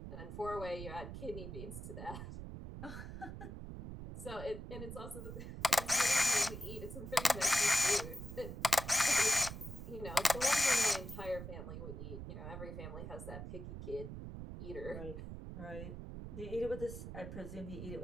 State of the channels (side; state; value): right; noise; rumble, 8 dB below the sound